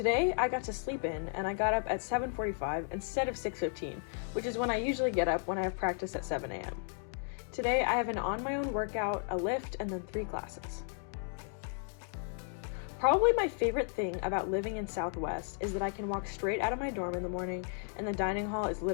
I got to sleep in, and I got up at 7:45 instead of 6:15, which is when I usually get up when I have practice at 7 a.m. Today, I have an on-my-own workout, a lift, and then 3 classes. Probably my favorite thing about living in Southwest is that I can walk straight out of my dorm in the morning and the dining hall is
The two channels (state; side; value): silent; right; 55 dB below the other